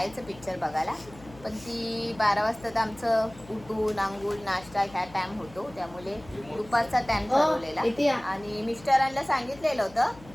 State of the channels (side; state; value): left; noise; hum, 21 dB below the sound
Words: पिक्चर बघायला, पण ती 12 वाजता तर आमचं उठून आंघोळ नाश्ता ह्या टाईम होतो, त्यामुळे दुपारचा टाईम ठरवलेला. आणि मिस्टरांना सांगितलेलं होतं